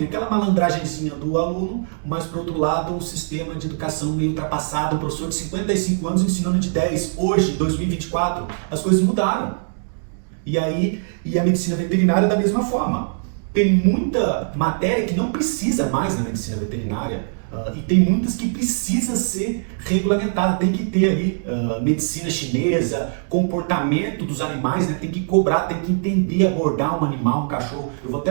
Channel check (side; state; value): left; silent; digital silence